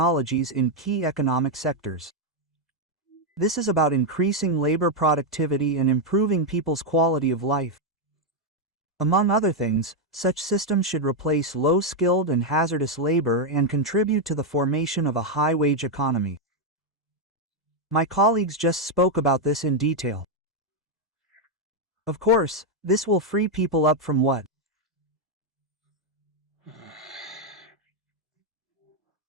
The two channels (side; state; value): both; normal; correlation 0.01